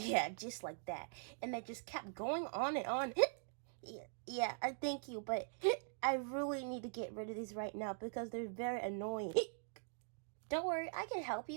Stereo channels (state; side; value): silent; left; digital silence